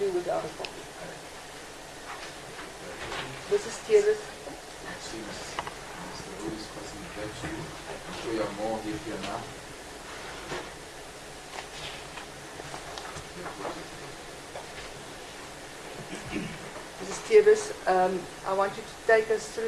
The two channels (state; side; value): identical; both; correlation 1.00